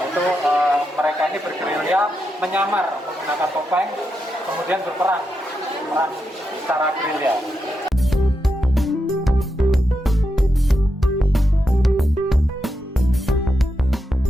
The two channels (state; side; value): normal; both; correlation 0.85